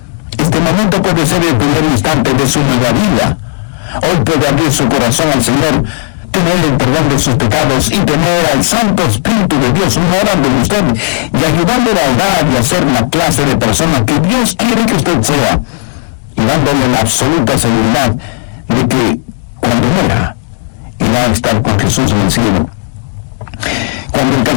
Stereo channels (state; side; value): silent; right; 72 dB below the other